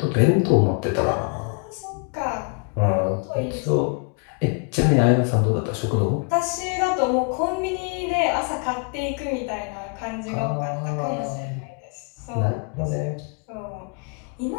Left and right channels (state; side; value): quieter; right; 36.2 dB